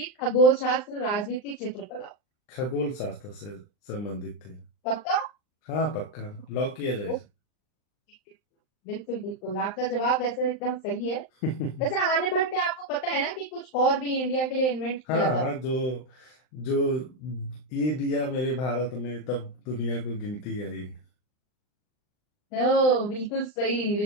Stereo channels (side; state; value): right; late; 39 ms